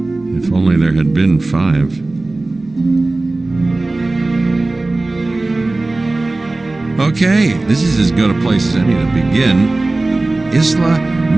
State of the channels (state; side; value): quieter; left; 3.0 dB